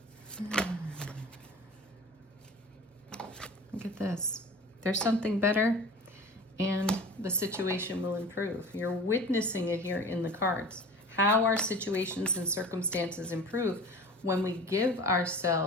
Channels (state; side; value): normal; both; correlation 0.38